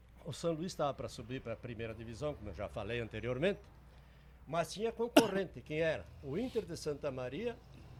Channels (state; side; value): identical; both; correlation 1.00